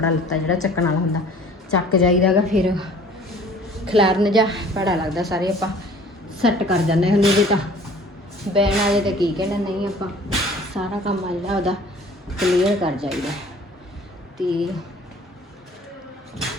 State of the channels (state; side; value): normal; both; correlation 0.50